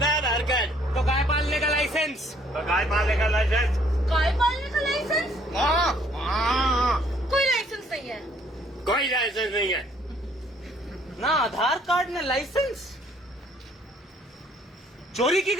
है आधार कार्ड। तो गाय पालने का लाइसेंस। तो गाय पालने का लाइसेंस। गाय पालने का लाइसेंस? कोई लाइसेंस नहीं है। कोई लाइसेंस नहीं है। ना आधार कार्ड ना लाइसेंस। चोरी की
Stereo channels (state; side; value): normal; both; correlation 0.62